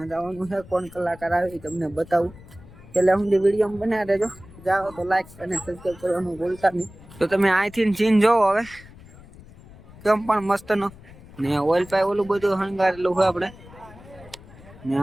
જવાનું છે. કોણ કલાકાર આવે તમને બતાવું. છેલ્લે સુધી વિડીયો બનાવી દેજો. જાઓ તો લાઈક અને સબસ્ક્રાઈબ કરવાનું ભૂલતા નહીં. તો તમે અહીંથી સીન જોવો હવે કેમ પણ મસ્ત નો ને ઓઇલ પાઇપ ઓલું બધું શણગારેલું છે આપણે. ને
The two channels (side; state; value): left; noise; rumble, 20 dB below the sound